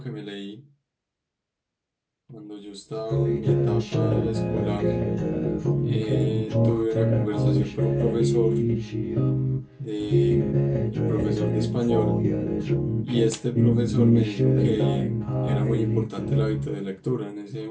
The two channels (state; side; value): identical; both; correlation 1.00